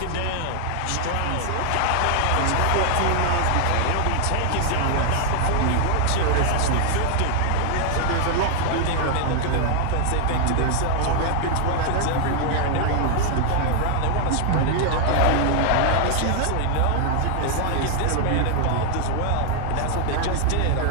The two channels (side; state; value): both; different; correlation 0.00